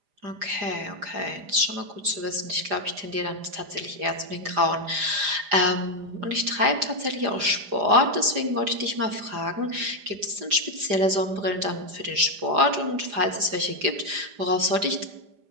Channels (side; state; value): left; late; 4.9 ms